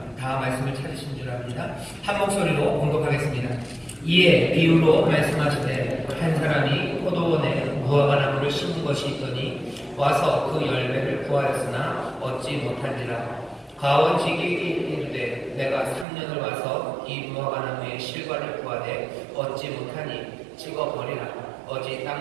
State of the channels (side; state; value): left; drops out; at 16.1 s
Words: 다 말씀을 찾으신 줄 압니다. 한 목소리로 공독하겠습니다. 이에 비유로 말씀하시되 한 사람이 포도원에 무화과 나무를 심은 것이 있더니 와서 그 열매를 구하였으나 얻지 못한지라. 가원지기에게 이르되 내가 3년을 와서 이 무화과 나무의 실과를 구하되 얻지 못하니 찍어버리라. 어찌